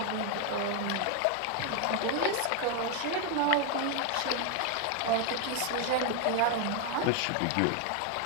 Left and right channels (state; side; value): different; both; correlation 0.01